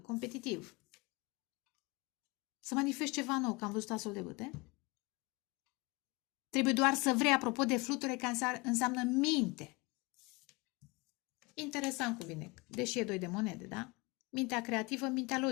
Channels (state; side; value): quieter; right; 25.7 dB